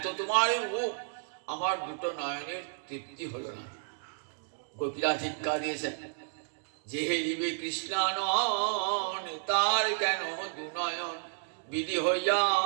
তোমার রূপ, আমার দুটো নয়নের তৃপ্তি হলো না। গোপীরা ধিক্কার দিয়েছেন, যে হেরিবে কৃষ্ণানন তার কেন দুনয়ন, বিধি হইয়া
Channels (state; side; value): silent; left; digital silence